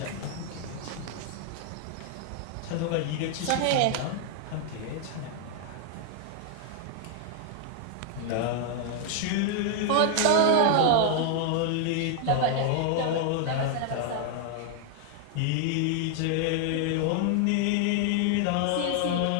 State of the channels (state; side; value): different; both; correlation 0.00